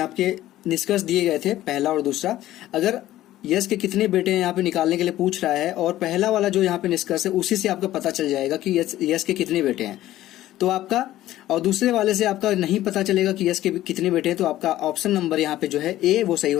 निष्कर्ष दिए गए थे, पहला और दूसरा, अगर यश के कितने बेटे हैं यहाँ पे निकालने के लिए पूछ रहा है, और पहला वाला जो यहाँ पे निष्कर्ष है उसी से आपका पता चल जाएगा कि यश के कितने बेटे हैं, तो आपका, और दूसरे वाले से आपका नहीं पता चलेगा कि यश के कितने बेटे हैं, तो आपका ऑप्शन नंबर यहाँ पे जो है ए, वो सही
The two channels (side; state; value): right; quieter; 14.4 dB